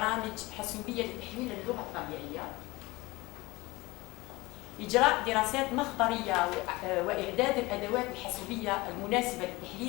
حاسوبية لتحليل اللغة الطبيعية، إجراء دراسات مخبرية وإعداد الأدوات الحاسوبية المناسبة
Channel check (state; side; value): quieter; right; 21.7 dB